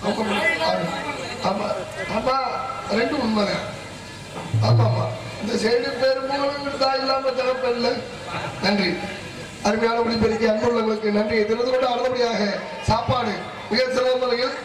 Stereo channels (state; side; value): identical; both; correlation 1.00